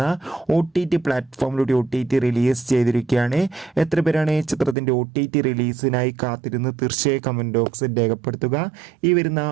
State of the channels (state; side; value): drops out; left; at 4.8 s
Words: OTT പ്ലാറ്റ്ഫോമിലൂടെ OTT റിലീസ് ചെയ്തിരിക്കുകയാണ്. എത്ര പേരാണ് ചിത്രത്തിൻ്റെ OTT റിലീസിനായി കാത്തിരുന്ന് തീർച്ചയായും കമൻറ്റ് ബോക്സിൽ രേഖപ്പെടുത്തുക. ഈ വരുന്ന